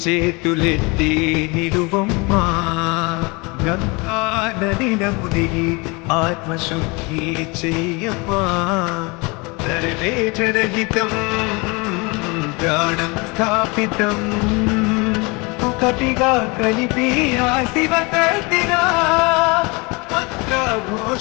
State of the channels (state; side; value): quieter; right; 27.6 dB